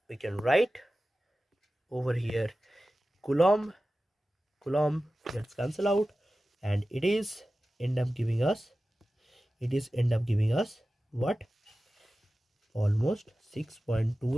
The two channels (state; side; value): normal; both; correlation 0.95